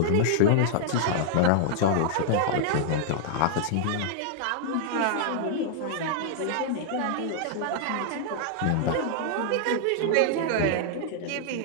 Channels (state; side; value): different; both; correlation -0.01